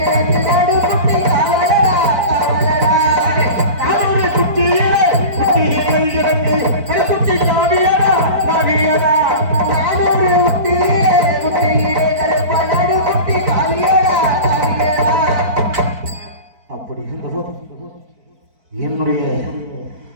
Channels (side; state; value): left; late; 4.5 ms